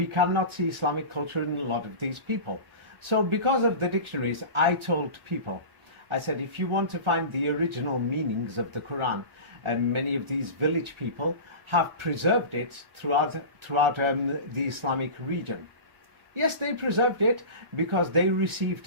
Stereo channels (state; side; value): late; left; 1.4 ms